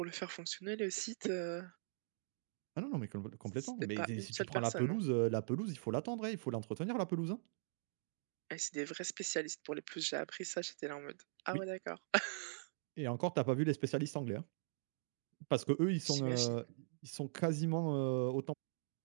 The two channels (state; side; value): silent; left; digital silence